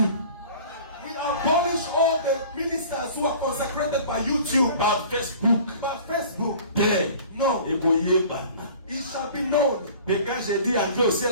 We abolish all the ministers who are consecrated by YouTube, par Facebook, by Facebook. Tel, No, et Boyebana. it shall be known. Et quand j'ai dit entrer au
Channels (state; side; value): inverted; both; correlation -0.45